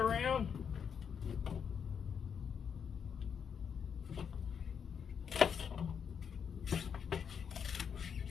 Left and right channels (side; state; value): right; quieter; 7.1 dB